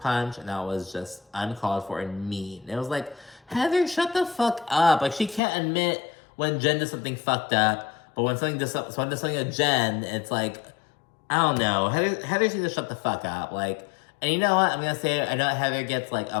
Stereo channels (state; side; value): drops out; right; at 5.4 s